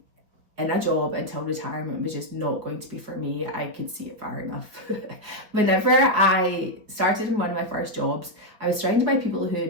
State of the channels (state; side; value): late; left; 4.8 ms